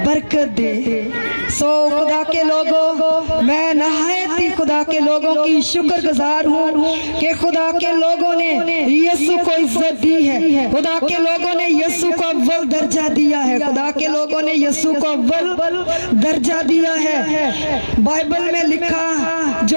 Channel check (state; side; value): inverted; both; correlation -1.00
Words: برکت دے. سو خدا کے لوگوں، میں نہایت ہی خدا کے لوگوں کی شکر گزار ہوں کہ خدا کے لوگوں نے یسوع کو عزت دی ہے. خدا کے لوگوں نے یسوع کو اول درجہ دیا ہے. خدا کے لوگوں نے یسوع کو اول درجہ دیا ہے. بائبل میں لکھا، جو